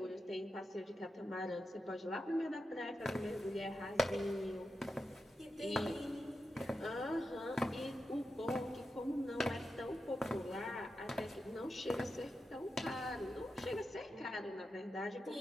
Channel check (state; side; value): normal; both; correlation 0.89